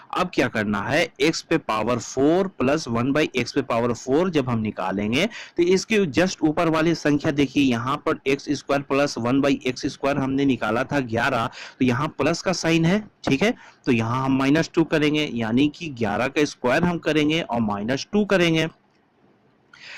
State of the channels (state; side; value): identical; both; correlation 1.00